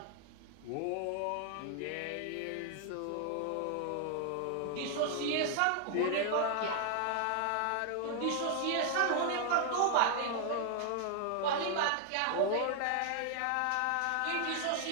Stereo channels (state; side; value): different; both; correlation 0.00